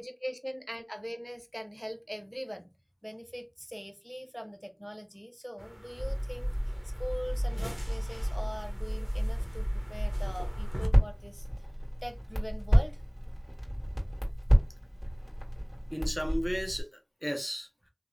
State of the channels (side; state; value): both; identical; correlation 1.00